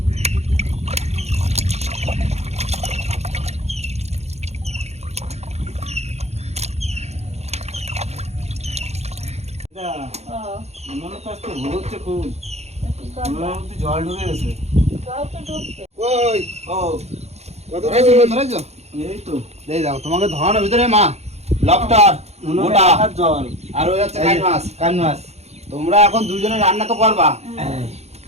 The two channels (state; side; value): late; left; 0.31 ms